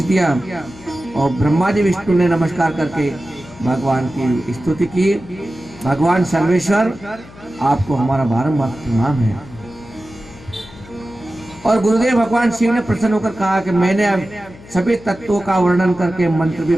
दिया और ब्रह्मा जी विष्णु ने नमस्कार करके भगवान की स्तुति की। भगवान सर्वेश्वर आपको हमारा बारंबार प्रणाम है। और गुरुदेव भगवान शिव ने प्रसन्न होकर कहा कि मैंने अब सभी तत्वों का वर्णन करके मंत्र भी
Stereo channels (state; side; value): noise; left; hum, 20 dB below the sound